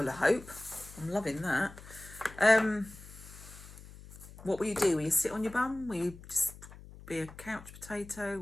of hope. I'm loving that. What will you do? Will you sit on your bum? Will you just be a couch potato?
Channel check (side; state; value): left; noise; hum, 17 dB below the sound